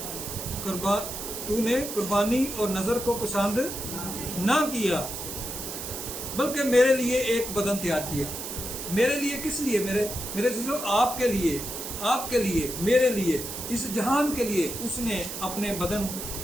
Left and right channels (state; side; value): noise; right; hiss, 7 dB below the sound